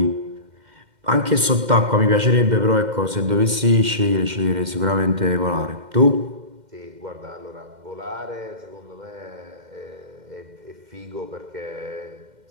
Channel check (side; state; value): left; late; 2.1 ms